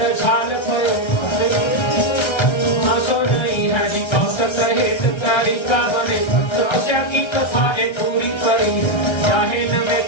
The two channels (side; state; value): right; late; 1.3 ms